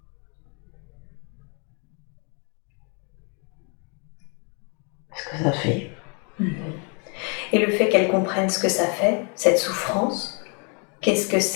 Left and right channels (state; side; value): quieter; right; 36.5 dB